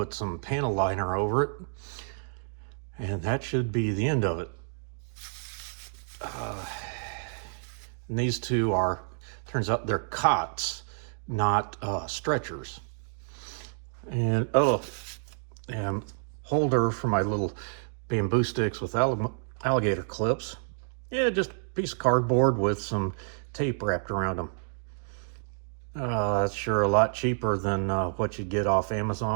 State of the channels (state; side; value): silent; left; digital silence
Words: some panel liner over it, and that should be the end of it. And these two are, turns out they're cots, not stretchers. And and holder for my little bamboo sticks with alligator clips. Yeah, just a piece of cardboard with some tape wrapped around them. That's sure a lot cheaper than what you get off